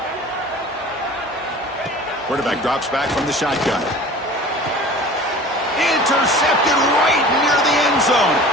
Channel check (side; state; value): both; normal; correlation 0.42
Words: Quarterback drops back from the shotgun. Intercepted right near the end zone.